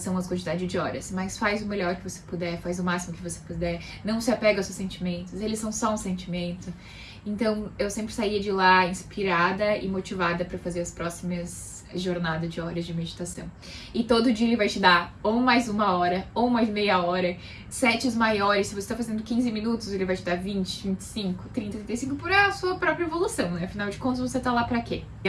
as quantidades de horas, mas faz o melhor que você puder, faz o máximo que você puder, não se apega aos seus sentimentos, eles são só um sentimento. Então eu sempre saía de lá inspirada e motivada para fazer as próximas jornadas de horas de meditação. E todo dia ele vai te dar ou mais uma hora, ou mais meia hora, sets maiores. Se você está fazendo 15 minutos, ele vai te dar 20, 25, 30, 35 por a sua própria evolução, né? Afinal de contas, você tá lá pra quê? E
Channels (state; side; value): identical; both; correlation 1.00